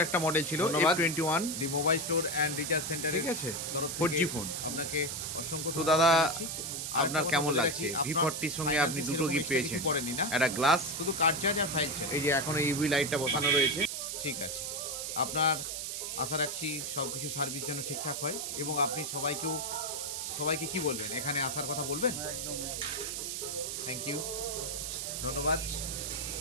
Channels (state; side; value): noise; right; hiss, 4 dB below the sound